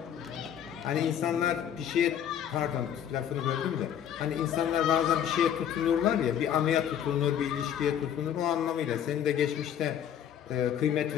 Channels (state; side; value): quieter; right; 9.5 dB